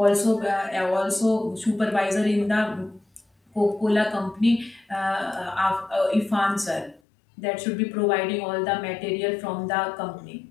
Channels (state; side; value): drops out; right; at 7.0 s